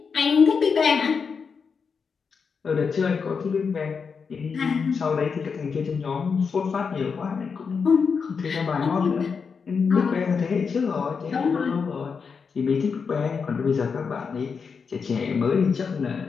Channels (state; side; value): quieter; right; 5.7 dB